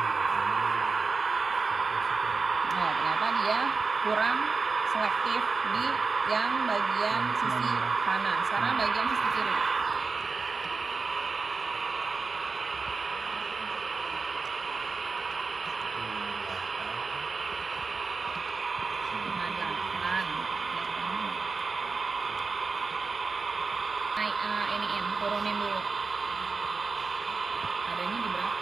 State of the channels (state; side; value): quieter; left; 4.4 dB